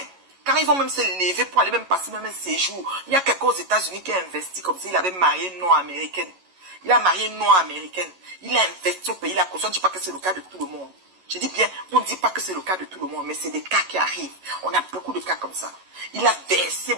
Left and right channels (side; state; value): left; late; 11 ms